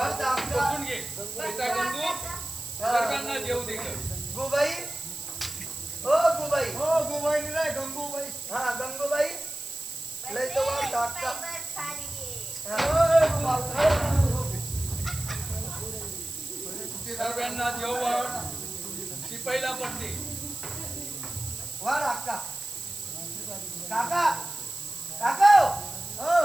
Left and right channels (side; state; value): right; noise; hiss, 9 dB below the sound